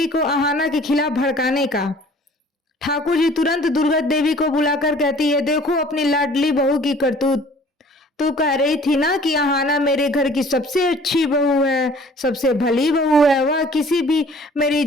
को आहाना के खिलाफ भड़काने का। ठाकुर जी तुरंत दुर्गा देवी को बुलाकर कहती है, देखो अपनी लाडली बहू की करतूत, तू कह रही थी ना कि आहाना मेरे घर की सबसे अच्छी बहू है, सबसे भली बहू है, वह किसी भी मेरी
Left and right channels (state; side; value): normal; both; correlation 0.52